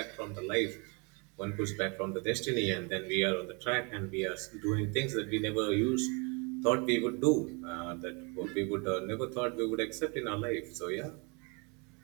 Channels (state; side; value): quieter; left; 32.1 dB